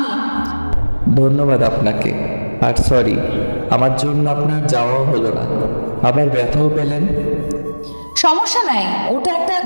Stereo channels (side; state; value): both; inverted; correlation -1.00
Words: ধন্যবাদ আপনাকে। আর সরি, আমার জন্য আপনার যাওয়াও হলো না, আবার ব্যথাও পেলেন। সমস্যা নাই, ওটা একটা